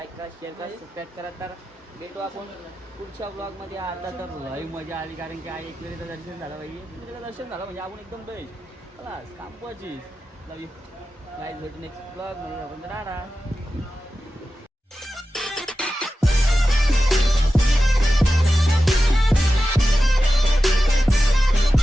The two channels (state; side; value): normal; both; correlation 0.93